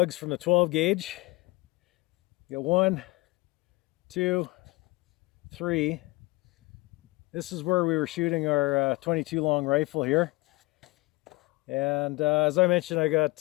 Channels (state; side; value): quieter; right; 22.7 dB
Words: from the 12 gauge. You got 1, 2, 3. This is where we were shooting our 22 long rifle here. And as I mentioned, I